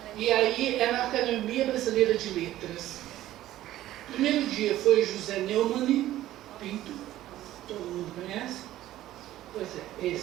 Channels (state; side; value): quieter; left; 14.2 dB